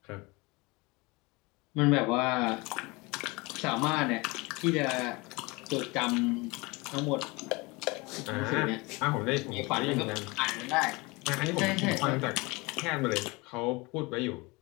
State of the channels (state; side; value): quieter; right; 25.2 dB